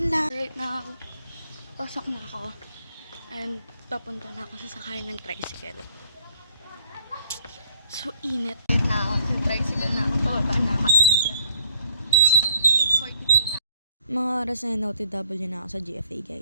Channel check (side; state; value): both; inverted; correlation -0.63